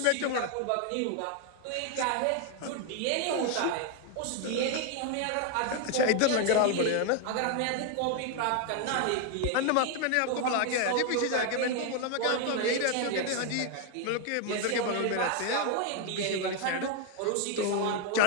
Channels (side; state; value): both; different; correlation 0.01